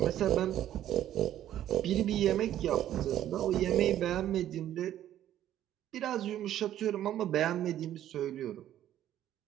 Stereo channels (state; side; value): quieter; left; 11.9 dB